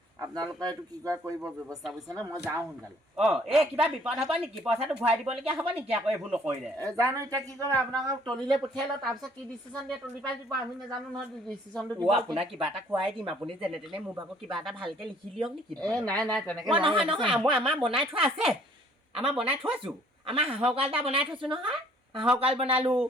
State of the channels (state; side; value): normal; both; correlation 0.59